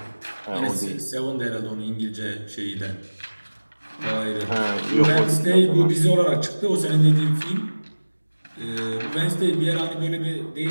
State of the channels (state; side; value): inverted; both; correlation -1.00